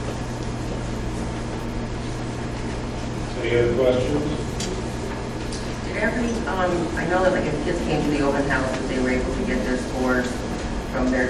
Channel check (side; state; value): both; identical; correlation 1.00